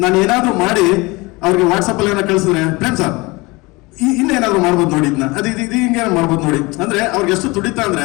ನಾನು ಏನಾದ್ರು ಮಾಡಿ ಅವ್ರಿಗೆ ವಾಟ್ಸಪ್ ಅಲ್ಲಿ ಏನೋ ಕಳಿಸಿದ್ರೆ, ಪ್ರೇಮ್ ಸರ್ ಇನ್ನೇನಾದ್ರು ಮಾಡ್ಬೋದು ನೋಡಿ, ಇದನ್ನ ಇದು ಹಿಂಗೆ ಮಾಡ್ಬೋದು ನೋಡಿ ಅಂದ್ರೆ, ಅವ್ರಿಗೆ ಎಷ್ಟು ತುಡಿತಾ ಅಂದ್ರೆ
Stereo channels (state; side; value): quieter; right; 23.9 dB